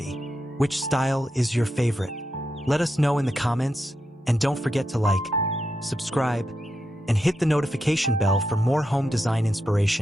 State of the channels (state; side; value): normal; both; correlation 0.85